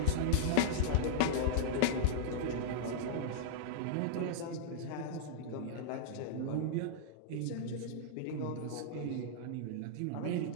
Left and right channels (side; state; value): both; different; correlation -0.02